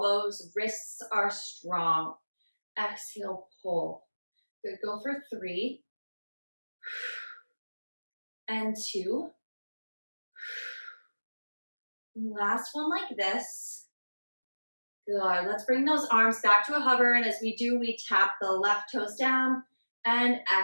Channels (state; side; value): inverted; both; correlation -1.00